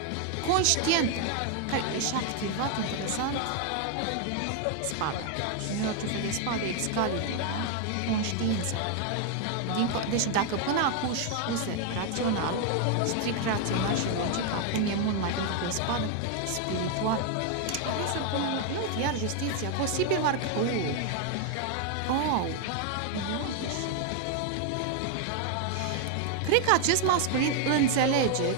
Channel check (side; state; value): both; different; correlation 0.01